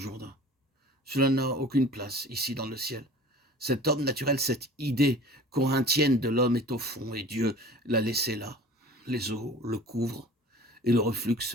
Cela n'a aucune place ici dans le ciel. Cet homme naturel, cette idée corinthienne de l'homme est au fond et Dieu l'a laissé là. Les eaux le couvrent et le reflux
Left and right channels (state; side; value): normal; both; correlation 0.43